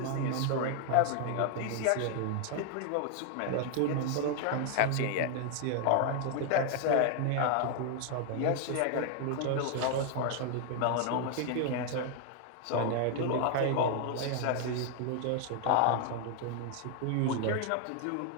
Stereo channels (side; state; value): both; different; correlation 0.00